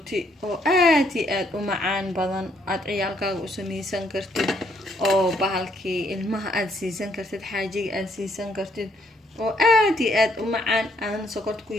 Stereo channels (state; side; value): normal; both; correlation 0.70